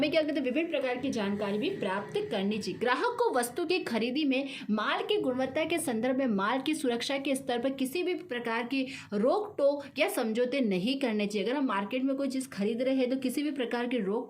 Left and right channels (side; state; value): both; identical; correlation 1.00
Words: क्या कहते हैं, विभिन्न प्रकार की जानकारी भी प्राप्त करनी चाहिए। ग्राहक को वस्तु की खरीदी में माल की गुणवत्ता के संदर्भ में माल की सुरक्षा के स्तर पर किसी भी प्रकार की रोक टोक या समझौते नहीं करने चाहिए। अगर हम मार्केट में कोई चीज़ खरीद रहे हैं तो किसी भी प्रकार के रोक